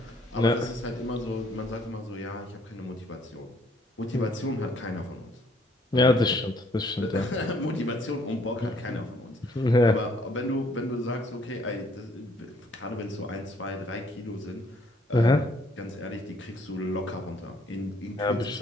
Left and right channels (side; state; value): both; normal; correlation 0.64